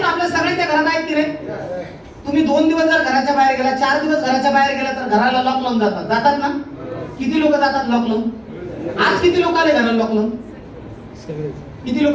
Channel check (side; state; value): both; identical; correlation 1.00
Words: ना. आपल्या सगळ्यांच्या घरात आहेत की नाही? तुम्ही 2 दिवस जर घराच्या बाहेर गेला, 4 दिवस घराच्या बाहेर गेला तर घराला लॉक लावून जातात ना? किती लोक जातात लॉक लावून? आज किती लोक आले घराला लॉक लावून? किती लोक